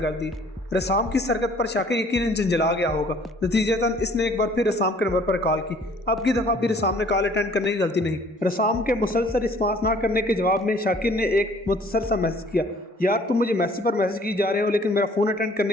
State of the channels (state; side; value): normal; both; correlation 0.56